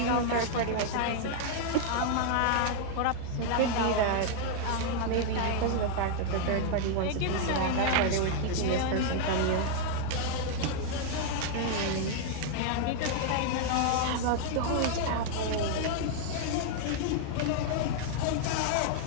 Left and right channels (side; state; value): both; different; correlation 0.00